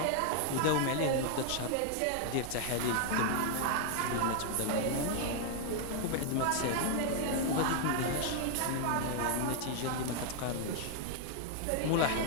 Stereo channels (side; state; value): both; different; correlation 0.00